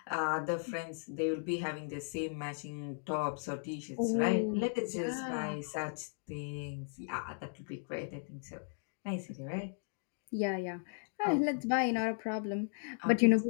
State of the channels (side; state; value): right; silent; digital silence